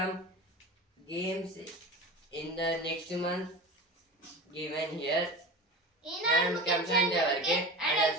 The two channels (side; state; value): both; normal; correlation 0.31